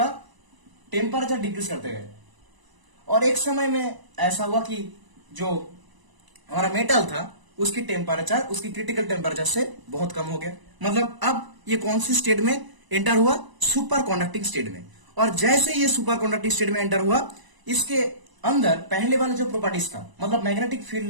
टेम्परेचर डिक्रीज करते गए, और एक समय में ऐसा हुआ कि जो हमारा मेटल था उसकी टेम्परेचर, उसकी क्रिटिकल टेम्परेचर से बहुत कम हो गया। मतलब अब ये कौन सी स्टेट में एंटर हुआ, सुपर कंडक्टिंग स्टेट में। और जैसे ये सुपर कंडक्टिंग स्टेट में एंटर हुआ, इसके अंदर पहले वाला जो प्रॉपर्टीज था, मतलब मैग्नेटिक फील्ड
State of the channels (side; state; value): left; late; 1.0 ms